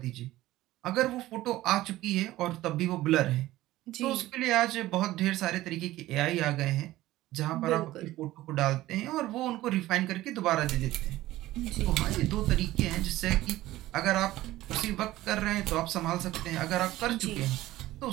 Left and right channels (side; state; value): left; quieter; 16.2 dB